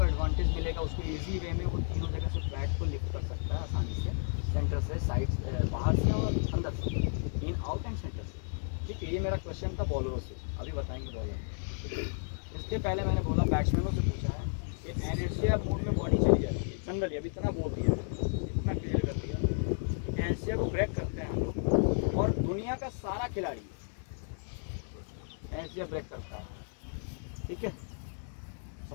एडवांटेज मिलेगा, उसको इजी वे में वो तीनों जगह से बैट को लिफ्ट कर सकता है आसानी से, सेंटर से, साइड, बाहर से और अंदर से, इन आउट एंड सेंटर से। ठीक है, ये मेरा क्वेश्चन था बॉलरों से, अभी बताएंगे बॉलर। इसके पहले मैंने बोला बैट्समैनों से पूछा है कि इनर्शिया मोड में बॉडी चली जाती है जनरली, अभी इतना बोल दिया, इतना क्लियर कर दिया। इनर्शिया को ब्रेक करते हैं हम लोग, और दुनिया का सारा खिलाड़ी इनर्शिया ब्रेक करता है। ठीक है,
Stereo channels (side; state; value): right; silent; digital silence